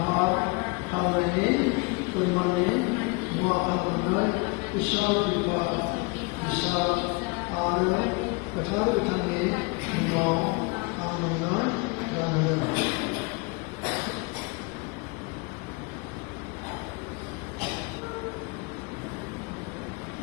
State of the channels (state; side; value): quieter; right; 29.0 dB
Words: खालामनायनि फोरमाननि मुवा खालामनानै इसोर बिफा फिसा आरो गोथार गोथांनि मुङाव आं नोंनो गानहोदों।